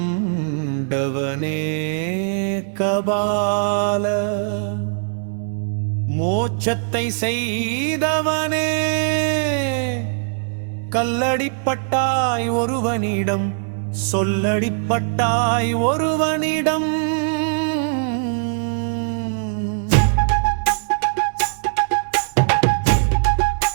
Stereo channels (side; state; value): left; silent; digital silence